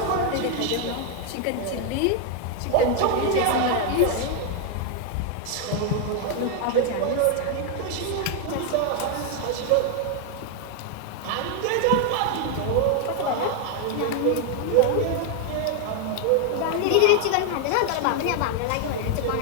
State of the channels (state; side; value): different; both; correlation 0.01